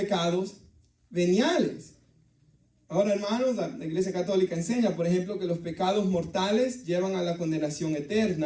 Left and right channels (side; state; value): both; identical; correlation 1.00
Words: veniales. Ahora, hermanos, la Iglesia Católica enseña, por ejemplo, que los pecados mortales llevan a la condenación